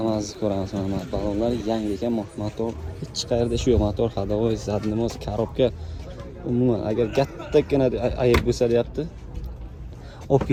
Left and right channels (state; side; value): identical; both; correlation 1.00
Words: ko'ramiz. Mana balonlar yangi ekan, motor hech qayerda ishi yo'q. Motor hadovoy, zadnimoz, korobka. Umuman agar kattagina ayib bo'lsa deyapti. Olib